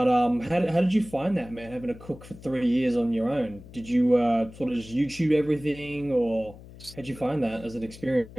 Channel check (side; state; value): left; noise; hum, 18 dB below the sound